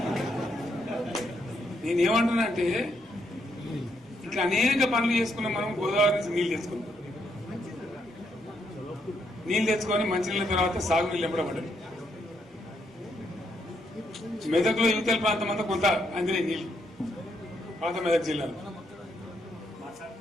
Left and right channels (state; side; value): normal; both; correlation 0.76